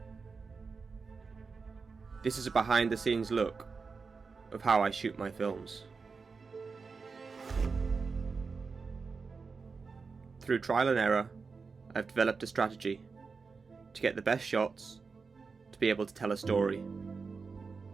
This is a behind the scenes look of how I shoot my films. Through trial and error, I've developed a strategy to get the best shots to be able to tell a story.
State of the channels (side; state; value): left; quieter; 4.8 dB